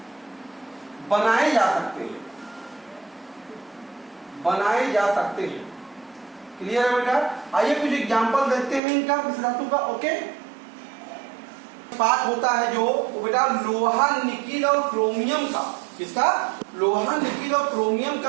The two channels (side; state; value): left; drops out; at 8.8 s